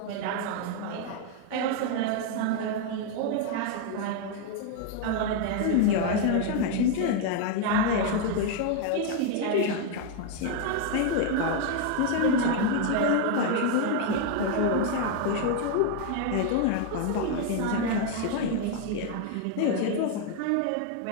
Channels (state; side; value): different; both; correlation 0.01